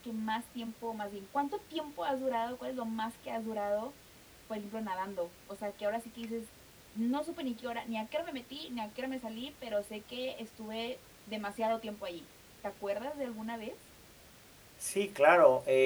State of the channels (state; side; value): identical; both; correlation 1.00